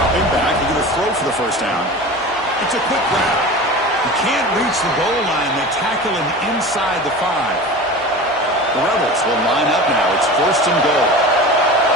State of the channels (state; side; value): normal; both; correlation 0.33